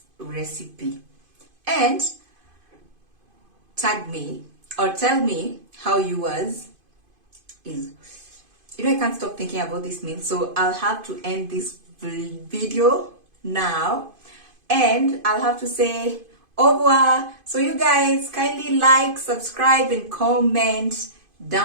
recipe and tag me or tell me how yours is. You know, I can't stop thinking about this meal, so I'll have to end this video now and I'll have to say au revoir. So you guys kindly like, subscribe and comment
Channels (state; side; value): late; left; 2.5 ms